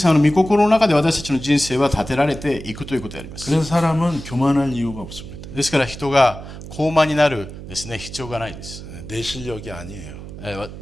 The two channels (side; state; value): right; noise; hum, 12 dB below the sound